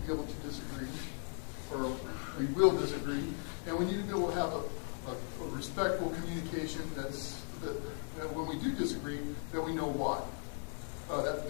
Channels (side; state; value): right; silent; 53 dB below the other